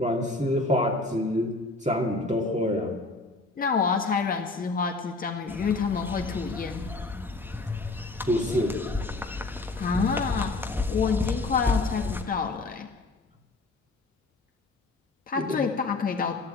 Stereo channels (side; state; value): right; quieter; 3.2 dB